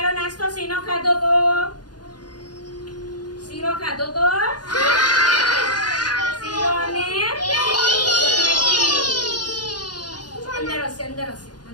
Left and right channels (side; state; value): right; late; 0.69 ms